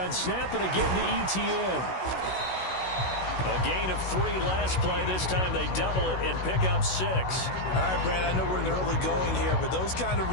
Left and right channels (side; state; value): right; late; 16 ms